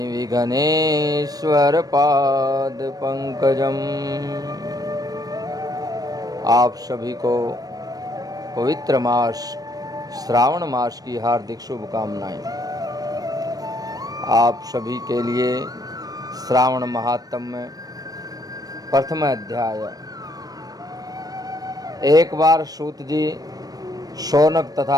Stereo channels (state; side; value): late; left; 0.18 ms